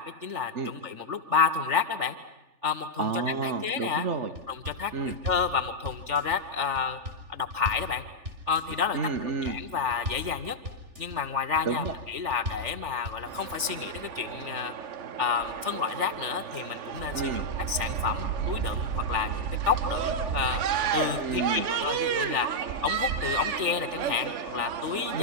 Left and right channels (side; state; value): left; late; 3.4 ms